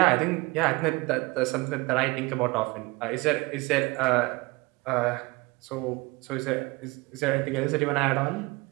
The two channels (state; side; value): quieter; left; 24.0 dB